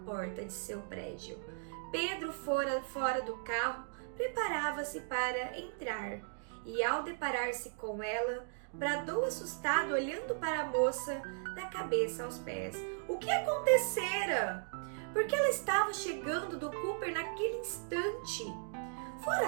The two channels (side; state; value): left; silent; digital silence